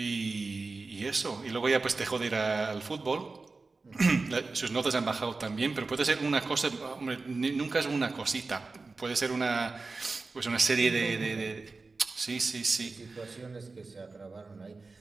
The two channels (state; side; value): quieter; left; 3.8 dB